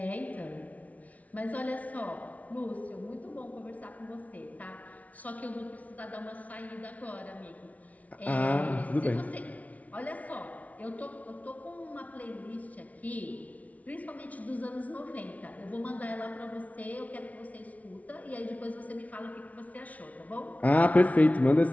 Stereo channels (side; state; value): right; late; 0.070 ms